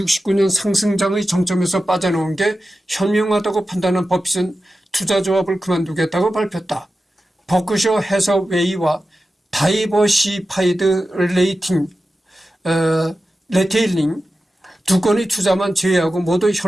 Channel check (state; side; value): normal; both; correlation 0.93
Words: 상승장의 정점에서 빠져나온 게 현명하다고 판단한 버핏은 투자조합을 그만두겠다고 발표했다. 버크셔 해서웨이와 다이버시파이드 레테일링 두 건의 투자만 제외하고 모두